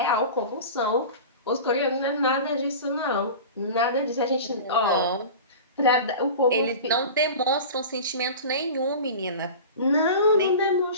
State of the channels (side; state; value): both; inverted; correlation -0.33